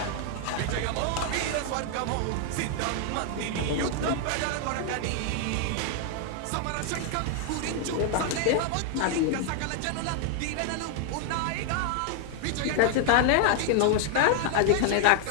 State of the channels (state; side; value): different; both; correlation 0.00